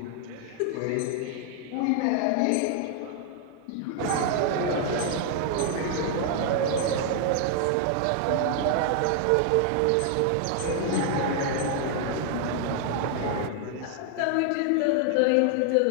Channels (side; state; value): both; different; correlation 0.00